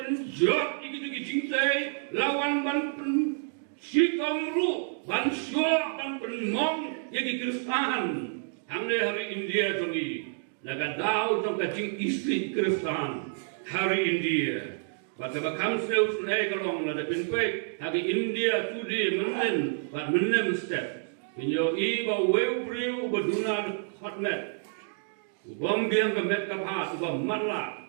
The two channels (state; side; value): silent; left; digital silence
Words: gitu kijing tei lawan ban sikamru ban syok ban penmong yagi Kristan hamne hari India jongi naga daw jong kacing istri Kristan hari India bata bakam seus nei kalong na dapin kwek hagi India tudi menen bat menem step inyo i ba weu priu baduna hotmet ubom biang ka met ka pha ubom matla